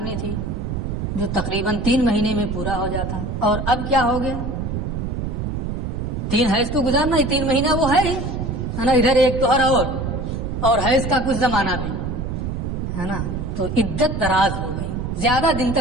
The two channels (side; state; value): right; noise; rumble, 3 dB below the sound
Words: تھی جو تقریباً 3 مہینے میں پورا ہو جاتا، اور اب کیا ہو گیا؟ 3 حیض تو گزارنا ہی، 3 مہینہ وہ ہے ہی، ہے نا، ادھر ایک طہر اور حیض کا کچھ زمانہ بھی، ہے نا. تو عدت دراز ہو گئی، زیادہ دن